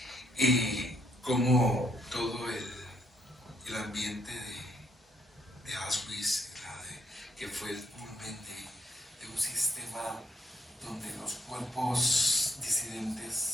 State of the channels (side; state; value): both; normal; correlation 0.71